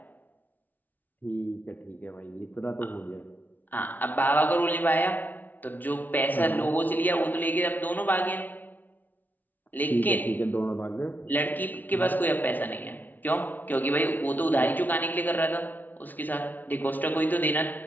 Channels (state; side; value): late; right; 0.083 ms